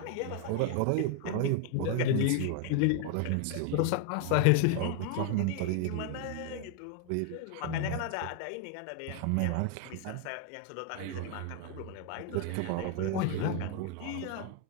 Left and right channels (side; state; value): both; different; correlation 0.00